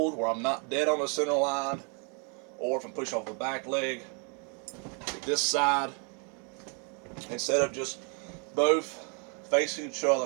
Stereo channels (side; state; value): left; quieter; 37.6 dB